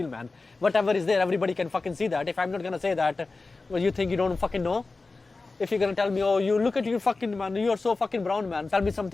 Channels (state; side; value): quieter; right; 3.7 dB